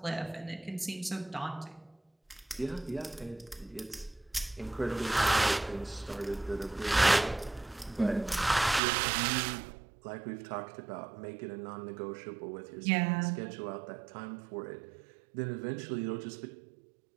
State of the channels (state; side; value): drops out; left; at 8.8 s